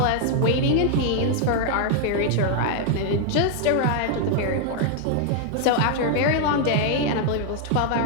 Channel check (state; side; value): different; both; correlation 0.00